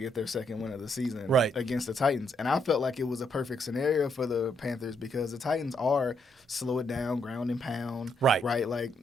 get their second win of the season against the Titans, and I felt like it was a perfect scenario for the Panthers because the Titans are slow it down, ground and pound, right, like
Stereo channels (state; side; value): normal; both; correlation 0.75